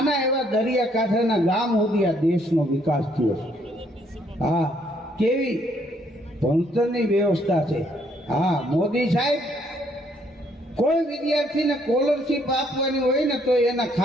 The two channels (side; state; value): both; normal; correlation 0.68